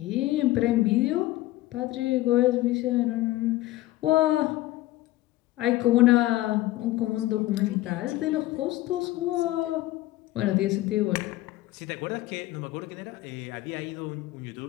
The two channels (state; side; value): quieter; right; 16.9 dB